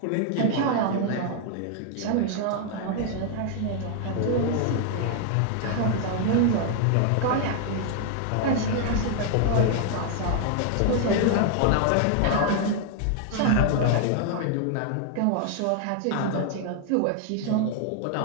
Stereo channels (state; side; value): different; both; correlation 0.00